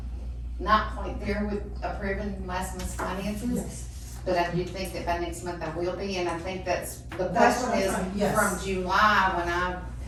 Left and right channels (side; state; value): both; identical; correlation 1.00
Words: not quite there with approving last month's finances. Yes. But I do think that by next month I will be, and I think that's, the That's question what I'm is, trying- yes. from July, when I